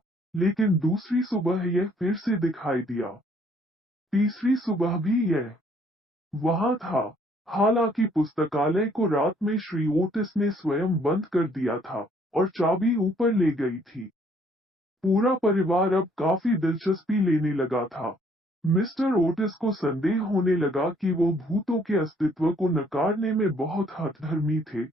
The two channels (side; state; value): both; normal; correlation 0.63